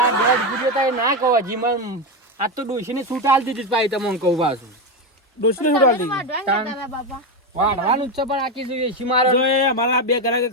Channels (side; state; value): both; normal; correlation 0.12